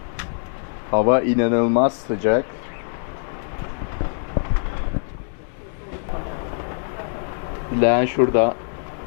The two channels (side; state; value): right; silent; 61 dB below the other